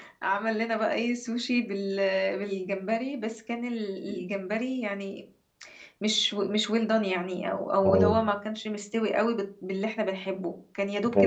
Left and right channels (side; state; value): both; identical; correlation 1.00